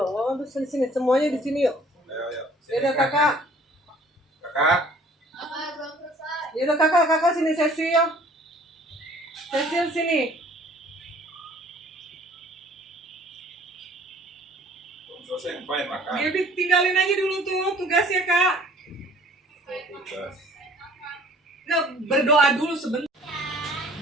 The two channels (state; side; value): normal; both; correlation 0.54